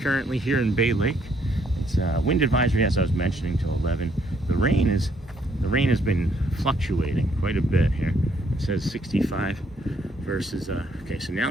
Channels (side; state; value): both; normal; correlation 0.69